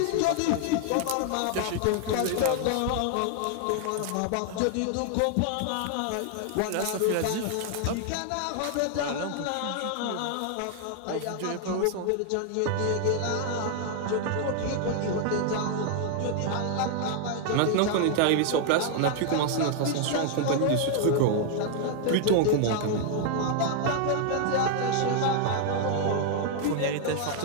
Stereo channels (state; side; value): different; both; correlation 0.00